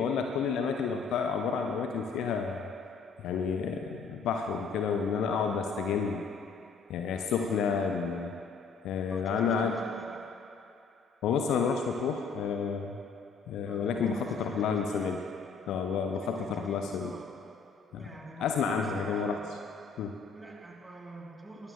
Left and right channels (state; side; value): quieter; right; 5.4 dB